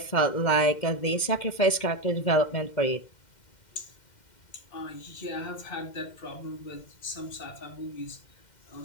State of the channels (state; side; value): late; right; 2.1 ms